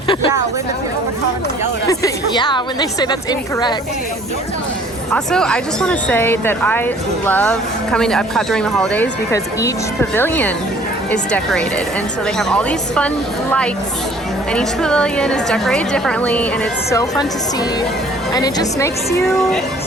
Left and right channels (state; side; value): normal; both; correlation 0.55